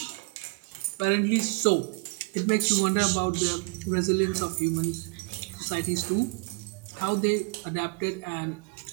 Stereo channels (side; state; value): left; quieter; 30.5 dB